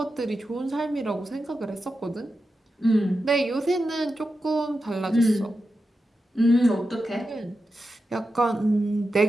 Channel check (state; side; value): normal; both; correlation 0.90